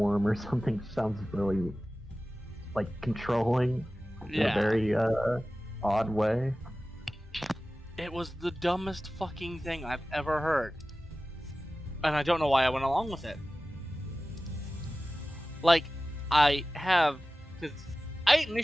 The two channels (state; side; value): normal; both; correlation 0.96